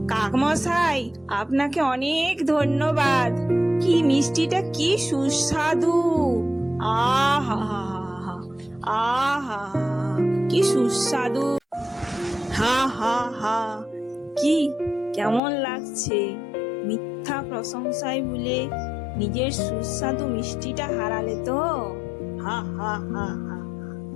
কাকমশাই, আপনাকে অনেক ধন্যবাদ। কি মিষ্টিটা কি সুস্বাদু! আহা আহা, কি সুস্বাদু! হা হা হা, কি কেমন লাগছে? মিথ্যা প্রশংসায় ভুলে নিজের সুস্বাদু মিষ্টিটা হারালে তো? হা হা হা হা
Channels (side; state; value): right; drops out; at 15.4 s